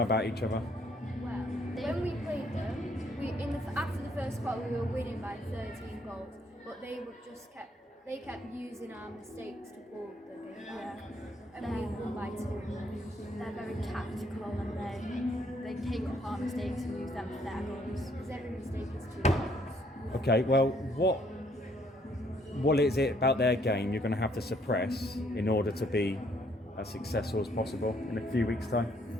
about each other? Well, when we played them, after the first quarter we were winning by 13 goals, but they kept using our mistakes to pull the game back. And we won by 2. They're very tactical, and they take up our mistakes and use them for their goals. Because every mistake is 2 goals. Okay, well, what is it about their game you're going to have to suppress in order to be as successful as possible in a few weeks' time?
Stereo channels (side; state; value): both; normal; correlation 0.67